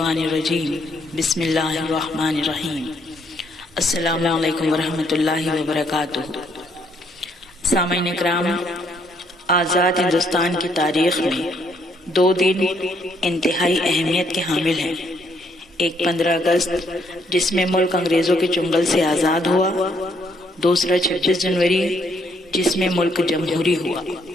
الرجیم بسم اللہ الرحمن الرحیم السلام علیکم ورحمۃ اللہ وبرکاتہ۔ سامعین اکرام، آزاد ہندوستان کی تاریخ میں 2 دن انتہائی اہمیت کے حامل ہیں۔ ایک 15 اگست جس میں ملک انگریزوں کے چنگل سے آزاد ہوا، دوسرا 26 جنوری جس میں ملک جمہوری ہوا،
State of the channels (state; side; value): normal; both; correlation 0.70